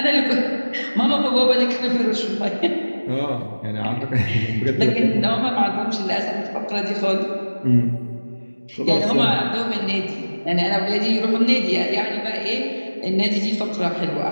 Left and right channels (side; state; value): both; inverted; correlation -1.00